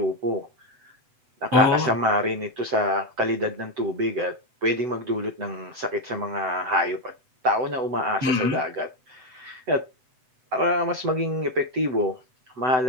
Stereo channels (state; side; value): late; left; 7.9 ms